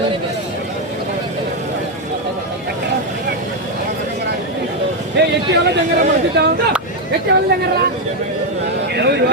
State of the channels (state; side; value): normal; both; correlation 0.04